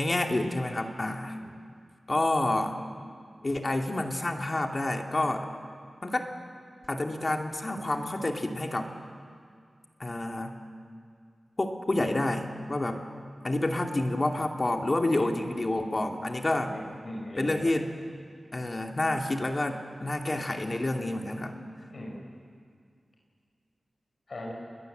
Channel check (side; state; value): both; normal; correlation 0.98